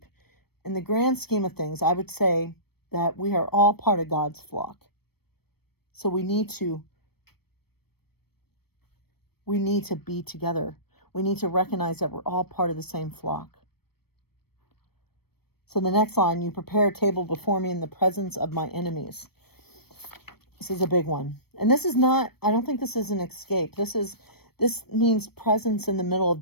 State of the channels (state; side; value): late; right; 0.96 ms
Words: in the grand scheme of things, I would say that we are all part of God's flock. So we need to be together. We need to recognize that we're all part of the same flock. So the next line, you prepare a table before me in the presence of my enemies. This is a big one. And this is not, I don't think this is an escape. This means presence in the middle of